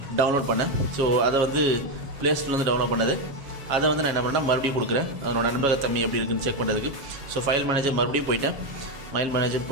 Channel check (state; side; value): late; left; 7.2 ms